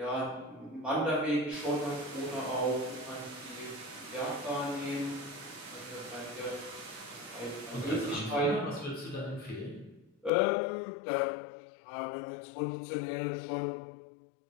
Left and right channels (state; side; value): drops out; right; at 10.3 s